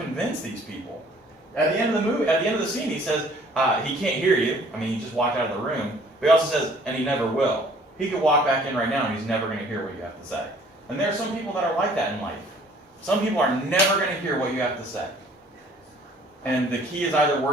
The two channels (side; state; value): both; normal; correlation 0.56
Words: these people. At the end of the movie, at the end of the scene, he says, he can't hear you. I mean, he just walked out of the room. But he also says, and he never will. He could walk back in right now and he's never going to hear what you have to say. And there are some people that are like that in life. Some people are never going to hear what you have to say. And the key is either